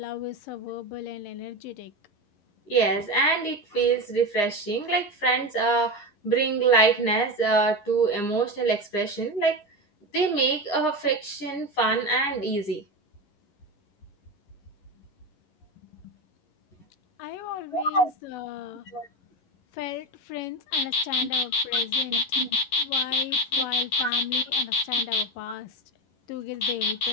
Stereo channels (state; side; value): late; right; 11 ms